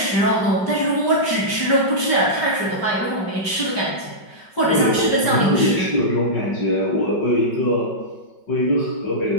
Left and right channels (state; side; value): late; right; 5.3 ms